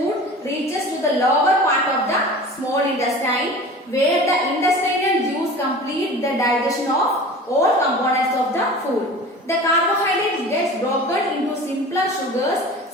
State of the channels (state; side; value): normal; both; correlation 0.38